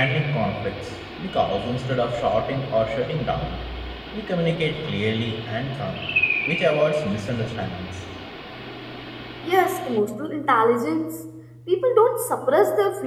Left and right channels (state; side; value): identical; both; correlation 1.00